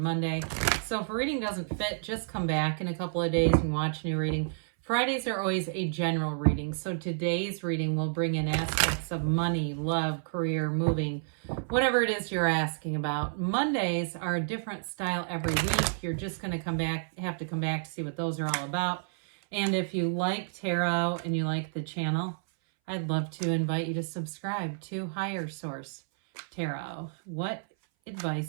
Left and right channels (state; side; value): silent; left; 58 dB below the other